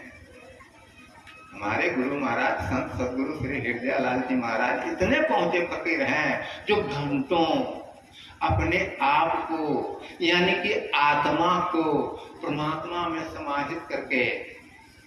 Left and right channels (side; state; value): both; identical; correlation 1.00